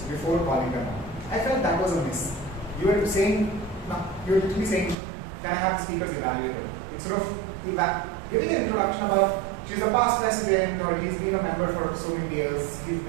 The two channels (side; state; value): left; drops out; at 5.0 s